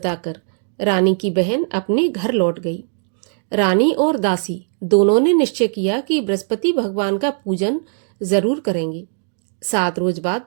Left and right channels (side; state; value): left; silent; 66 dB below the other